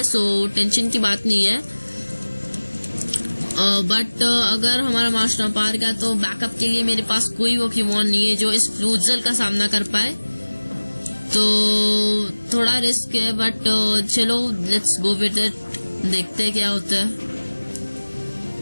सो टेंशन की बात नहीं है। बट अगर हमारा मास्टॉर्म पार गया तो बैकअप के लिए मेरे पास कोई पोकेमॉन नहीं है जो इस फ्लूजल का सामना कर पाए, तो थोड़ा रिस्क है। बट चलो लेट्स गो विद इट, देखते हैं क्या होता है।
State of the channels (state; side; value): inverted; both; correlation -1.00